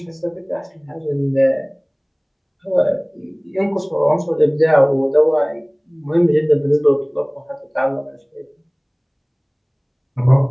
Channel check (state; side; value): identical; both; correlation 1.00